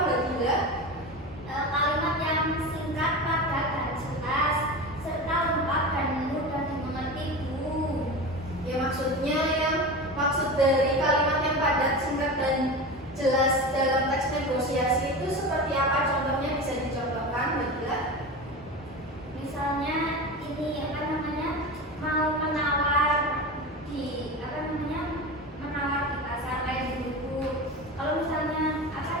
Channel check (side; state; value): both; normal; correlation 0.27